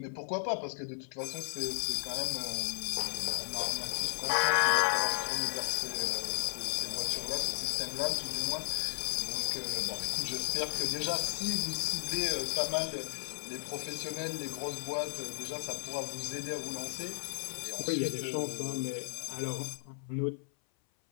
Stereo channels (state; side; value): silent; right; 55 dB below the other